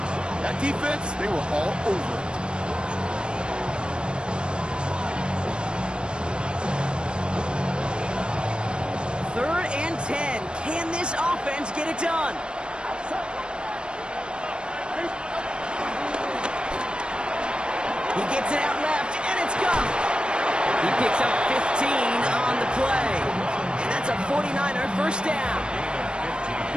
That defense, they were all over it. Third and 10. Can this offense get it done? He gets it out left, and it's gone. He picks up 15 on the play. And that's a 49er 1st down.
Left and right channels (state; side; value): late; left; 0.054 ms